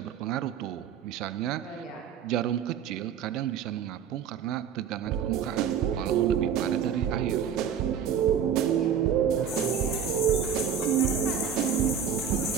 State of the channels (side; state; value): left; quieter; 8.0 dB